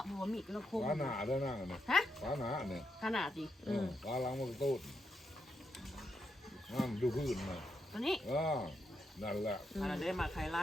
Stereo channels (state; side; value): normal; both; correlation 0.82